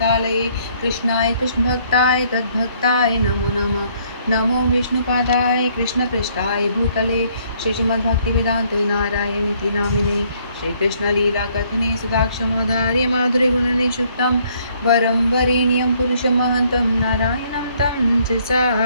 कृष्णाय कृष्णभक्ताय तद्भक्ताय नमो नमः। नमो विष्णुपादाय कृष्णपृष्ठाय भूतले श्रीमद्भक्तिवेदान्त नारायणीति नामिने श्रीकृष्णलीलाकथने सुधाक्षमोधार्य माधुर्यगुणनिषुक्तं वरं वरेण्यं पुरुषमहन्तं नारायणं तं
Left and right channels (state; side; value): inverted; both; correlation -0.65